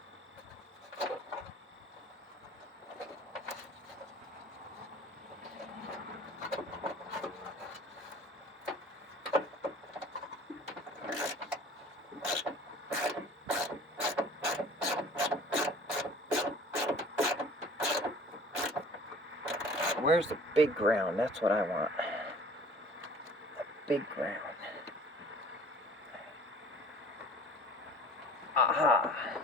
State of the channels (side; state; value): both; normal; correlation 0.47